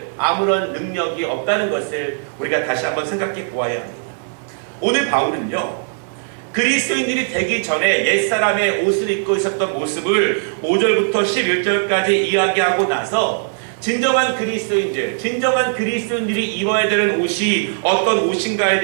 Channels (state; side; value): silent; left; digital silence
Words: 아무런 능력이 없다는 것을 우리가 다시 한번 생각해 보아야 합니다. 오늘 바울은요, 그리스도인들이 되기 전에 옛사람의 옷을 입고 있었던 모습을 5절부터 11절까지 이야기하고 나서 진정한 그리스도인들이 입어야 되는 옷이 어떤 옷인가에